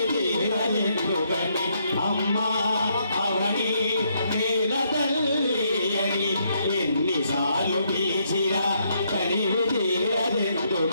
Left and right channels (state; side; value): inverted; both; correlation -0.74